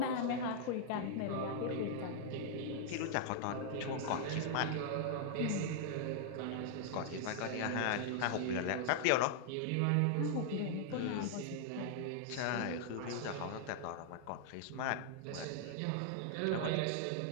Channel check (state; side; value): different; both; correlation -0.01